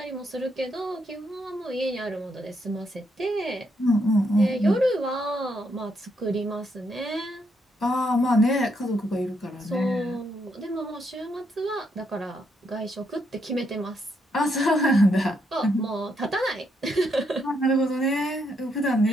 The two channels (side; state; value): both; normal; correlation 0.77